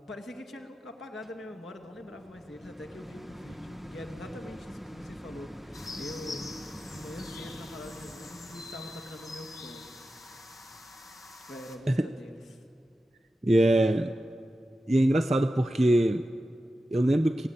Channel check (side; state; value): both; normal; correlation 0.92